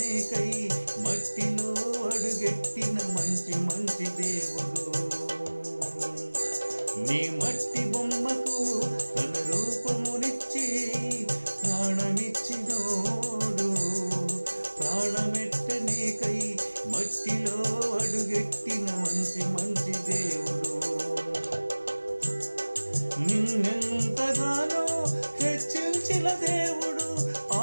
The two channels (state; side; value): inverted; both; correlation -1.00